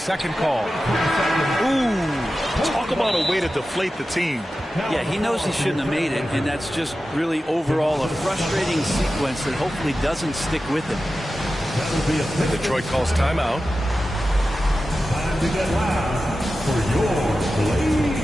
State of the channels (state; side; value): normal; both; correlation 0.93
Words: call. Ooh, talk about a way to deflate the team. Yeah, he knows he shouldn't have made it, and that's just really overall a frustrating sequence that hopefully doesn't stick with him. Detroit calls timeout. Time to get loud for your